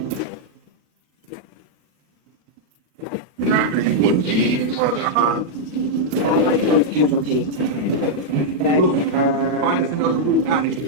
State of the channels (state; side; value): late; left; 39 ms